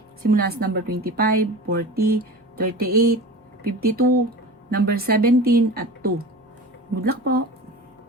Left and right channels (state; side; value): normal; both; correlation 0.34